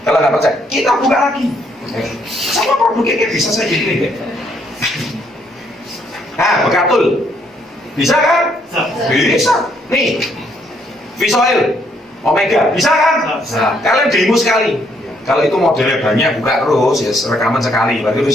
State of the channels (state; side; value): normal; both; correlation 0.70